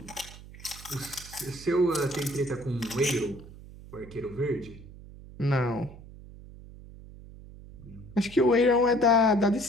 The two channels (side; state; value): right; noise; hum, 17 dB below the sound